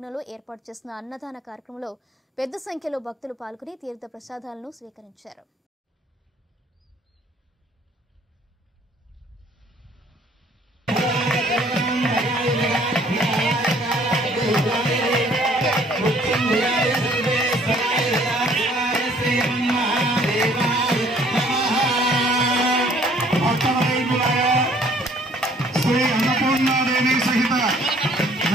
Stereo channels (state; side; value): normal; both; correlation 0.59